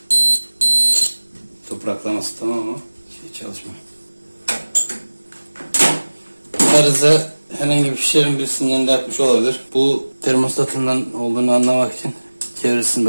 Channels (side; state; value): both; inverted; correlation -1.00